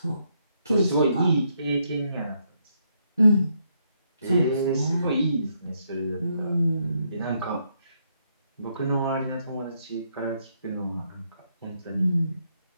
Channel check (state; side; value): inverted; both; correlation -0.76